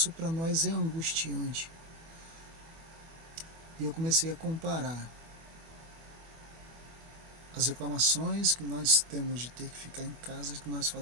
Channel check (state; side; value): late; left; 24 ms